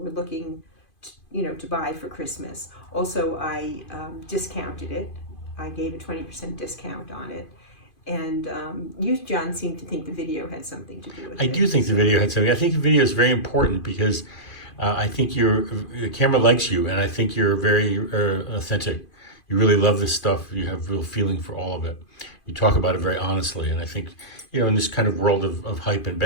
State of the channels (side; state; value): right; late; 2.5 ms